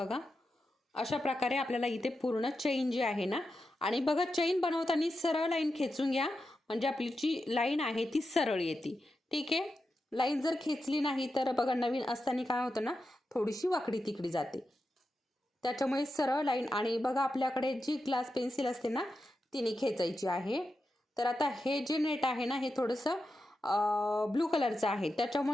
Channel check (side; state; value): both; normal; correlation 0.89